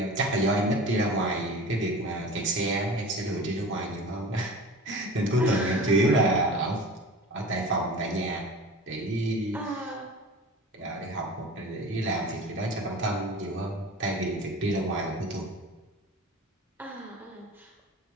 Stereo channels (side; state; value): both; normal; correlation 0.37